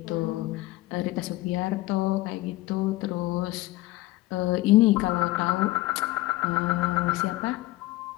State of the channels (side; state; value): right; quieter; 18.6 dB